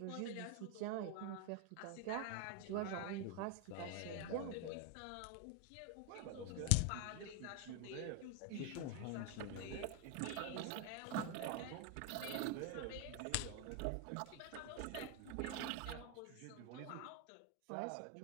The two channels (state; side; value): different; both; correlation 0.01